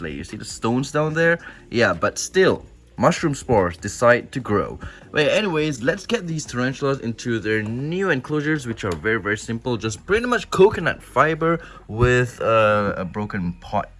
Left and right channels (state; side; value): identical; both; correlation 1.00